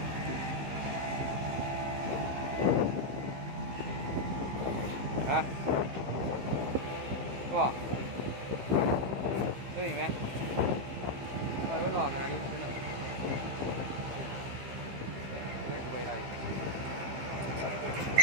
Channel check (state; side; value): late; left; 15 ms